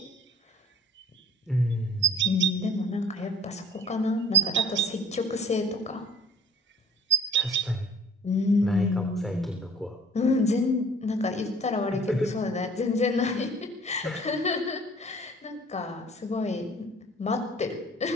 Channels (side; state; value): both; normal; correlation 0.51